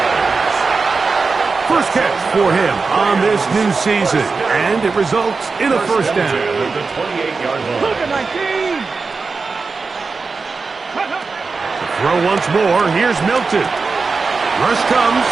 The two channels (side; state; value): left; quieter; 4.4 dB